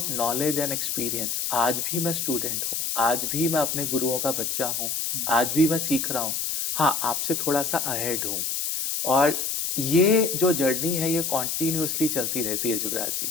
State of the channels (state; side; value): noise; left; hiss, 1 dB below the sound